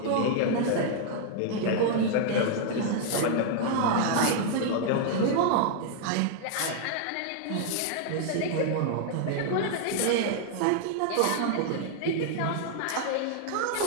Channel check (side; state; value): both; different; correlation 0.00